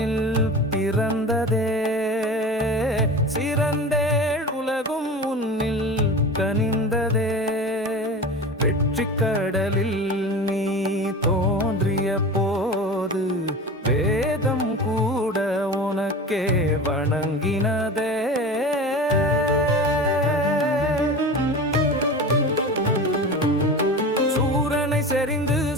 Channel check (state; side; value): normal; both; correlation 0.32